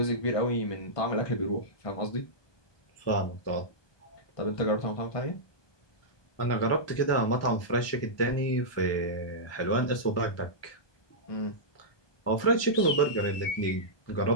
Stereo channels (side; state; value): right; late; 1.2 ms